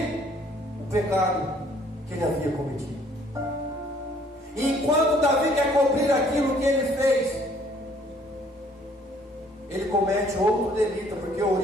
o pecado que ele havia cometido. E enquanto Davi quer cobrir aquilo que ele fez, ele comete outro delito, porque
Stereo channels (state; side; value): normal; both; correlation 0.61